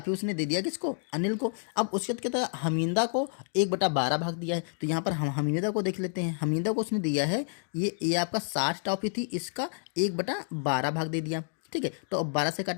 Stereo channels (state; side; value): silent; right; 58 dB below the other